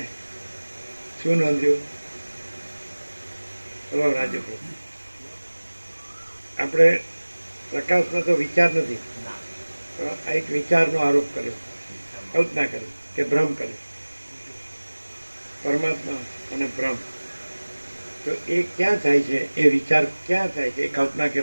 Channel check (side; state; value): both; inverted; correlation -1.00